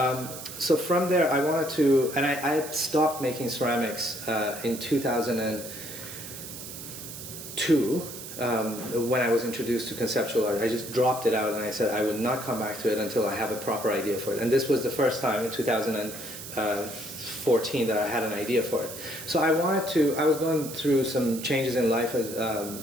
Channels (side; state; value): right; noise; hiss, 11 dB below the sound